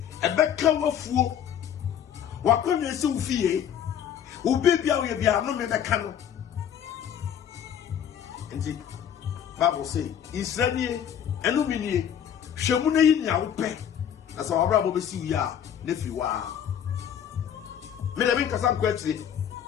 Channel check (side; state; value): right; quieter; 9.2 dB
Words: A back cower fool. What can you see? Who baby, I will be a no man that can. nti Bible say Israeli enumini hwemu na yi nya wo pe na sa wabra bo besi wi a na fi wa me da bin kasa kwatire